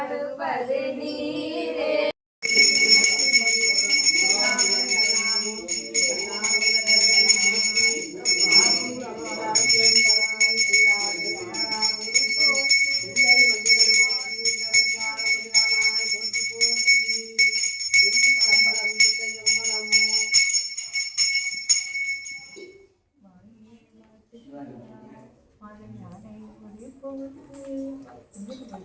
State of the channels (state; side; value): identical; both; correlation 1.00